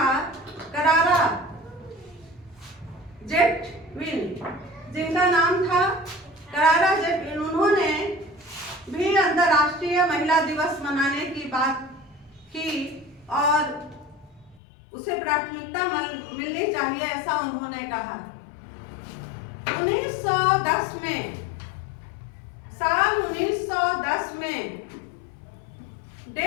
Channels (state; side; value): drops out; right; at 14.6 s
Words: करारा जेटविन, उन्होंने भी अंतर्राष्ट्रीय महिला दिवस मनाने की बात की और उसे प्राथमिकता मिलनी चाहिए, ऐसा उन्होंने कहा। 1910 में